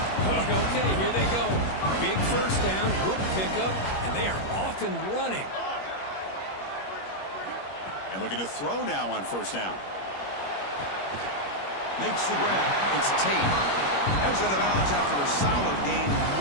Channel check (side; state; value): right; late; 21 ms